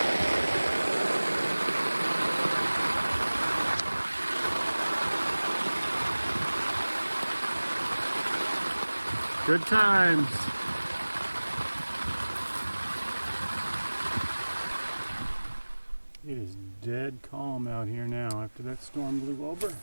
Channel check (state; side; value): inverted; both; correlation -1.00